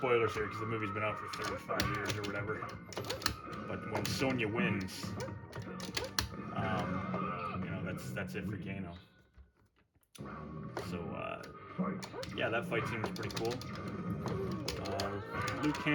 here because the movie's been out for 35 years or whatever. But when Sonya wins, you know, that's it for Kano. So yeah, that fight scene was pretty cool. Liu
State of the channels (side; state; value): both; identical; correlation 1.00